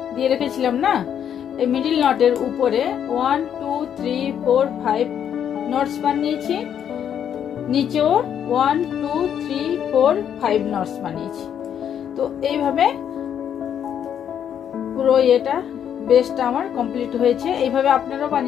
দিয়ে রেখেছিলাম না, এই মিডল নটের উপরে 1 2 3 4 5 নটস বানিয়েছি, নিচেও 1 2 3 4 5 নটস বানিয়েছি। তো এইভাবে পুরো এটা বেসটা আমার কমপ্লিট হয়েছে। এইভাবে আপনারাও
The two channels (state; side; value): quieter; right; 9.0 dB